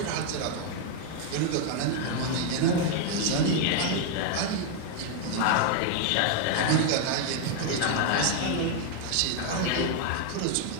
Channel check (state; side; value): different; both; correlation 0.00